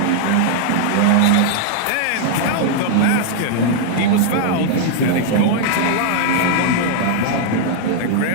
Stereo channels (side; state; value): both; different; correlation -0.01